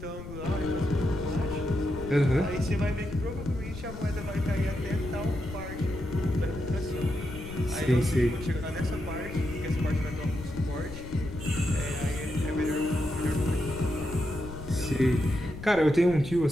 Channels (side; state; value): left; noise; rumble, 11 dB below the sound